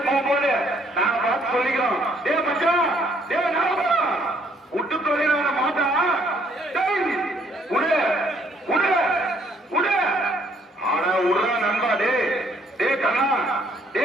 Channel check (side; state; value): both; normal; correlation 0.65